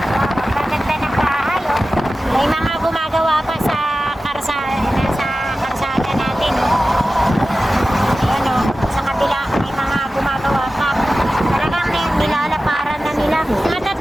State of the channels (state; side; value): normal; both; correlation 0.95